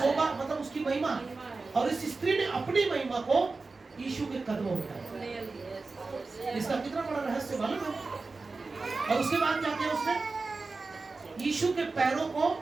मतलब उसकी महिमा। और इस स्त्री ने अपनी महिमा को यीशु के कदमों में डाला। इसका कितना बड़ा रहस्य मालूम है? और उसके बाद क्या किया उसने? यीशु के पैरों को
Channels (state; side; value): quieter; left; 3.9 dB